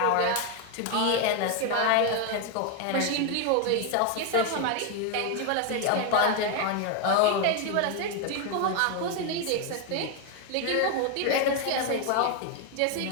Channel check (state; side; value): different; both; correlation 0.01